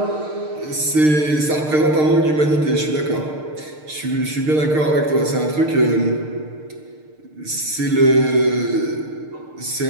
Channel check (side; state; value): left; late; 6.6 ms